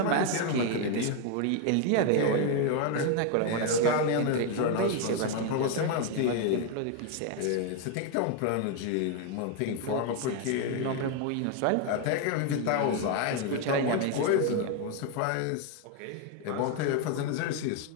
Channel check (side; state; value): both; different; correlation 0.01